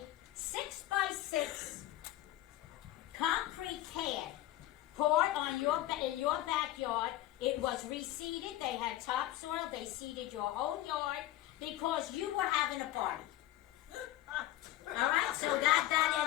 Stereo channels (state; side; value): quieter; right; 14.7 dB